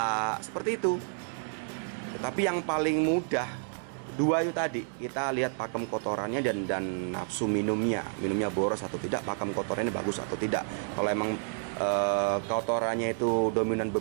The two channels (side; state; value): left; silent; 58 dB below the other